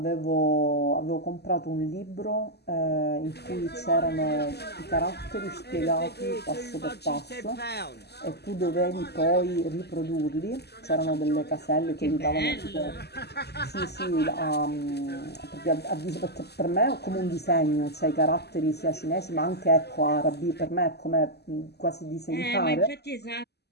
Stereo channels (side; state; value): right; late; 0.48 ms